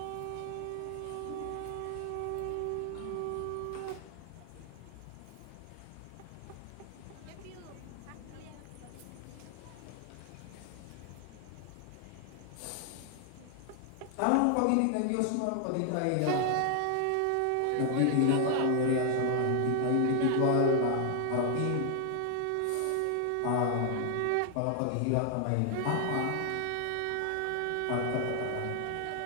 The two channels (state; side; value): different; both; correlation 0.00